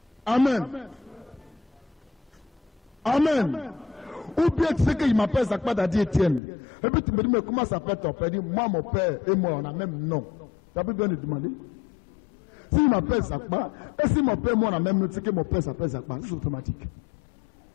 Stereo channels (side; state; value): right; drops out; at 6.4 s